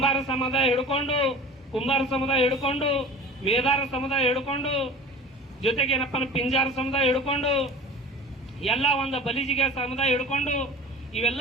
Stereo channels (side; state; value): both; normal; correlation 0.39